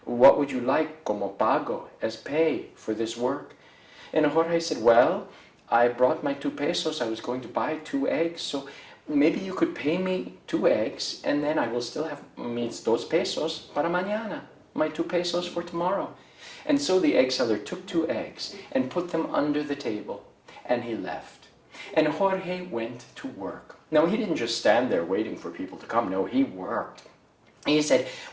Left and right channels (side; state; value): both; identical; correlation 1.00